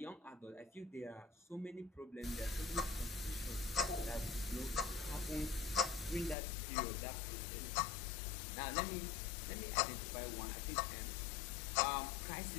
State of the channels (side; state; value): right; drops out; at 6.4 s